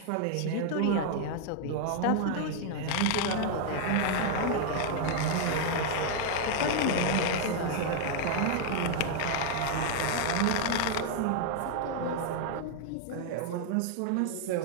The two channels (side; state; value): both; different; correlation 0.00